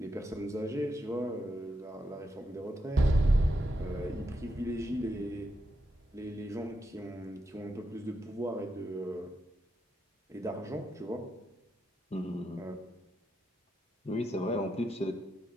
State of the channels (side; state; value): both; normal; correlation 0.84